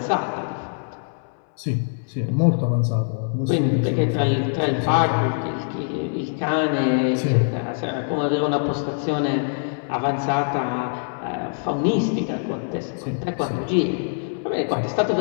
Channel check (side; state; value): right; silent; 61 dB below the other